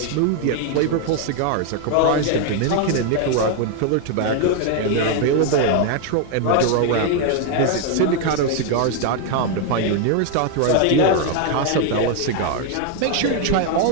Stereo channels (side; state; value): both; different; correlation 0.00